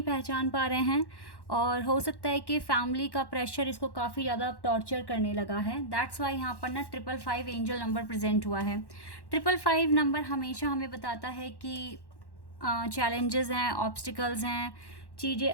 पहचान पा रहे हैं, और हो सकता है कि फैमिली का प्रेशर इसको काफ़ी ज़्यादा टॉर्चर करने लगा है। दैट्स वाई यहाँ पर ना 555 एंजल नंबर प्रेजेंट हुआ है। 555 नंबर हमेशा हमें बताता है कि चैलेंजेस हैं, ऑब्स्टिकल्स हैं, चीज़ें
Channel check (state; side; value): late; right; 1.1 ms